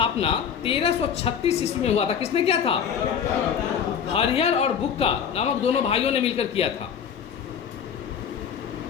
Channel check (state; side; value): quieter; right; 7.8 dB